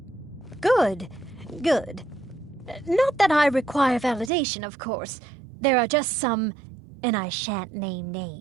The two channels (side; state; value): left; drops out; at 4.3 s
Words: Good. Good. Not that I require validation, of course. There are just some, and I shan't name